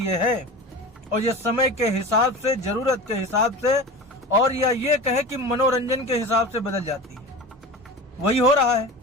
है और ये समय के हिसाब से, जरूरत के हिसाब से और या ये कहे कि मनोरंजन के हिसाब से बदल जाती है। वही हो रहा है।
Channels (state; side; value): normal; both; correlation 0.32